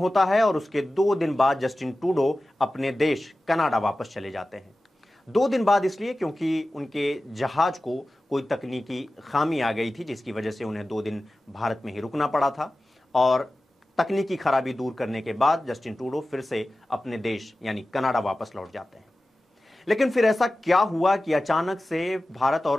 है और उसके 2 दिन बाद जस्टिन ट्रूडो अपने देश कनाडा वापस चले जाते हैं। 2 दिन बाद इसलिए क्योंकि उनके जहाज को कोई तकनीकी खामी आ गई थी, जिसकी वजह से उन्हें 2 दिन भारत में ही रुकना पड़ा था। और तकनीकी खराबी दूर करने के बाद जस्टिन ट्रूडो फिर से अपने देश यानी कनाडा वापस लौट जाते हैं। लेकिन फिर ऐसा क्या हुआ कि अचानक से भारत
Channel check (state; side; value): normal; both; correlation 0.95